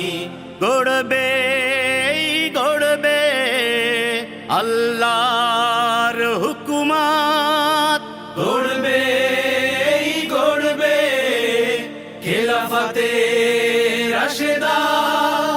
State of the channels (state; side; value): identical; both; correlation 1.00